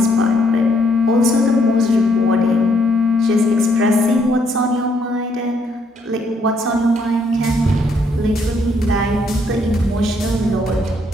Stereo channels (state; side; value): normal; both; correlation 0.70